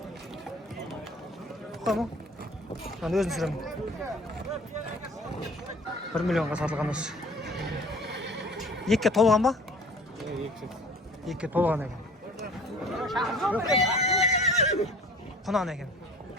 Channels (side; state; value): both; normal; correlation 0.47